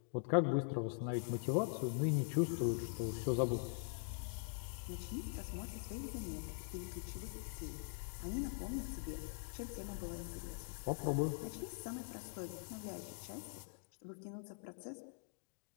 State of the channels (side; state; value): right; silent; digital silence